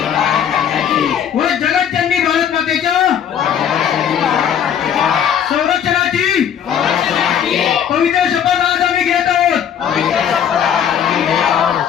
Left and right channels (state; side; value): quieter; right; 8.8 dB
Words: व जगज्जननी भारत मातेच्या संरक्षणाची पवित्र शपथ आज आम्ही घेत आहोत.